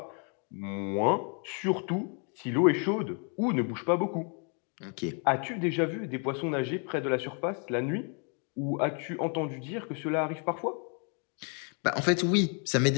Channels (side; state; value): right; quieter; 39.2 dB